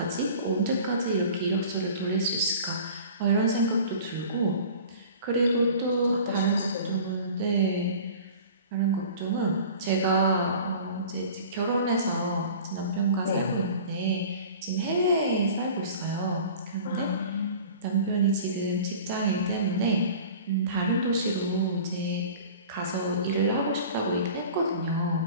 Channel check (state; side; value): inverted; both; correlation -0.42